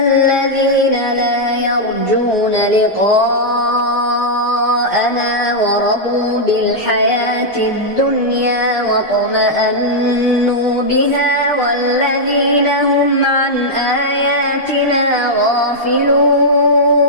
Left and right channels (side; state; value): both; normal; correlation -0.06